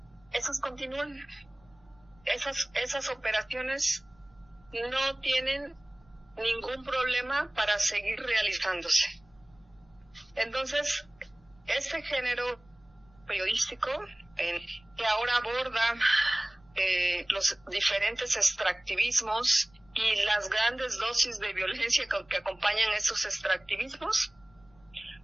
esas continúan. Esas operaciones no tienen ningún problema para seguir realizándose. Entonces, este género periodístico que ahora aborda los diferentes extractivismos y las grandes dosis de violencia que acompañan esos extractivismos,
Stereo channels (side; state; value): left; noise; rumble, 30 dB below the sound